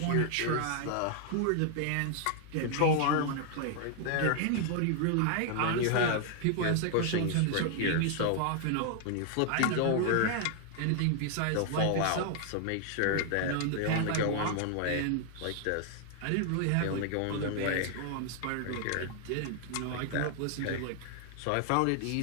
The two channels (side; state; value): both; different; correlation 0.00